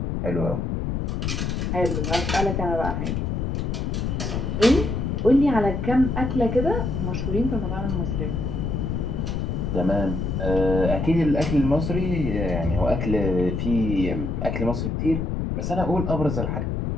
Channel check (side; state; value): left; noise; rumble, 1 dB below the sound